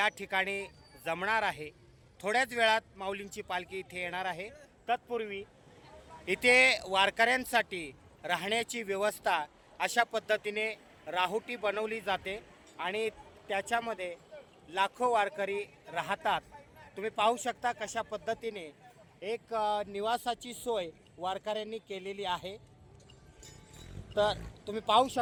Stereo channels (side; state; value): both; identical; correlation 1.00